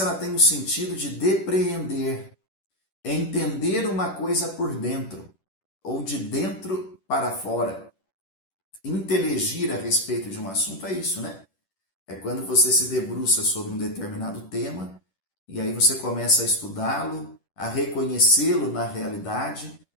ela tem o sentido de depreender, entender uma coisa por dentro, ou de dentro para fora. Inteligir a respeito de um assunto é isso, né? É quando você se debruça sobre um determinado tema e aí você começa a estudá-lo, a reconhecê-lo na realidade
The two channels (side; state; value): right; late; 10 ms